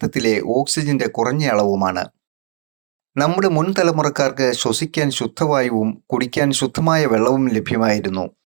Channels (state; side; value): silent; left; digital silence